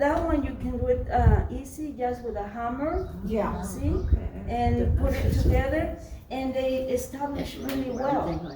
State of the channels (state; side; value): identical; both; correlation 1.00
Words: one you can do it easy, just with a hammer, Yeah. see? And put it together, and they establish really well,